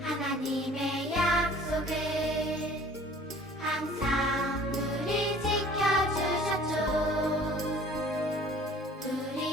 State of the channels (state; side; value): normal; both; correlation 0.50